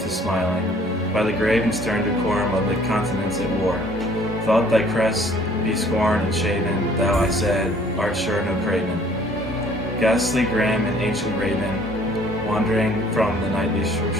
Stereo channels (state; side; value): normal; both; correlation 0.57